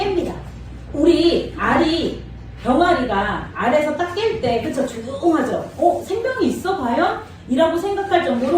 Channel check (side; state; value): both; identical; correlation 1.00